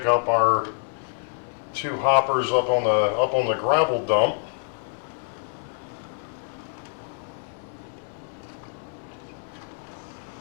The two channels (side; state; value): right; silent; digital silence